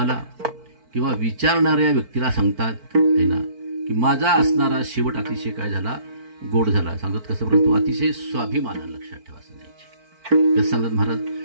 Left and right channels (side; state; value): left; late; 4.5 ms